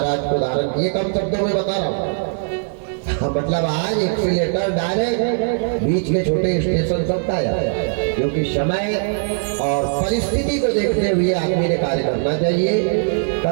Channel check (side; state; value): left; silent; 65 dB below the other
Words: को धारण किए। कम शब्दों में बता रहा हूँ। मतलब आज एक से लेकर डायरेक्ट बीच के छोटे स्टेशन तक आया, क्योंकि समय और परिस्थिति को देखते हुए आदमी ने कार्य करना चाहिए।